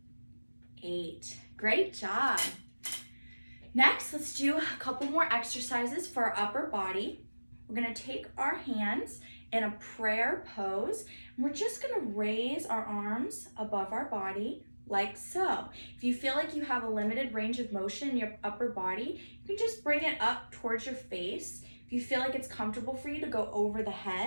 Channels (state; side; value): inverted; both; correlation -1.00